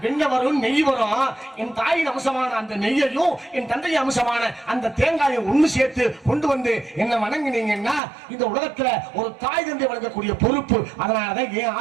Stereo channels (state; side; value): drops out; left; at 8.0 s